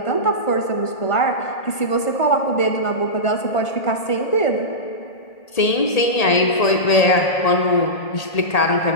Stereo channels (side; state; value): right; late; 1.8 ms